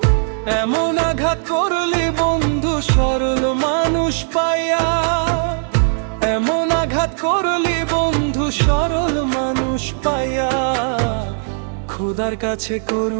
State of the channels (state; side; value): silent; left; digital silence